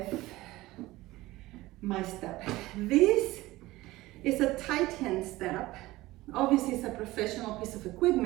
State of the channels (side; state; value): left; quieter; 18.5 dB